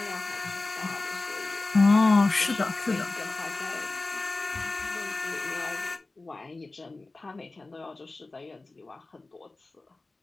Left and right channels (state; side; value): quieter; right; 3.3 dB